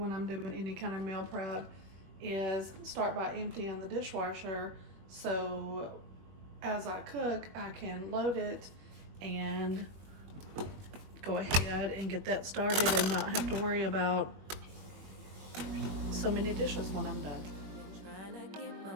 I'm doing any kind of meal prep is start by emptying the dishwasher, so as I cook, I can load it and go ahead and get that started and not have to worry about so many dishes when I'm done. Trying to get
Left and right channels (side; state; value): left; late; 21 ms